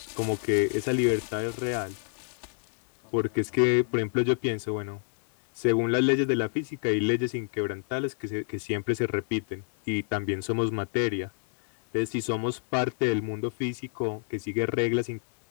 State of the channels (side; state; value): right; silent; 57 dB below the other